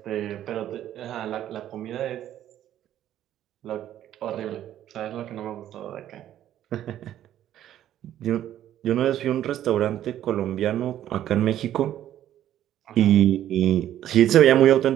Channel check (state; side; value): quieter; left; 11.8 dB